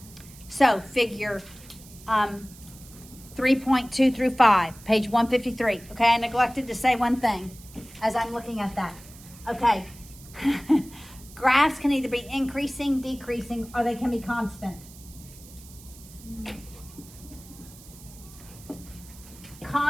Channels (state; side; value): noise; right; hiss, 20 dB below the sound